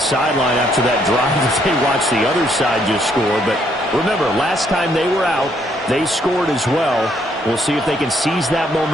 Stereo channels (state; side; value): normal; both; correlation 0.70